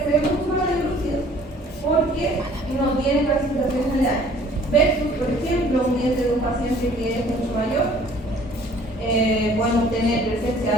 se ven mucho más lúcidos porque no tienen calcificaciones aledañas. Versus, por ejemplo, un diente de un paciente que es mucho mayor, podemos tener presencia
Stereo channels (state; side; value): normal; both; correlation 0.54